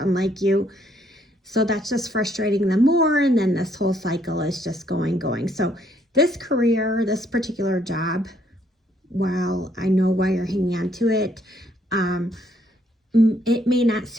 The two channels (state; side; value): normal; both; correlation 0.69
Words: you. So that's just frustrating them more. And then this whole cycle is just going. So this career, this particular job, while I know why you're hanging on to it, it may not